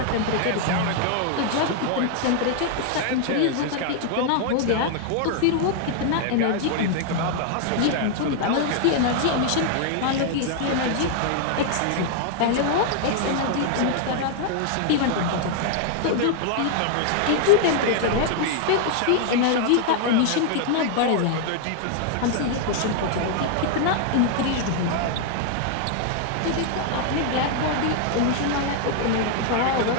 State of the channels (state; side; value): different; both; correlation 0.00